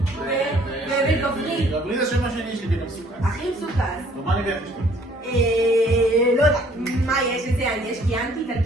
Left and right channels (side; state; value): both; normal; correlation 0.59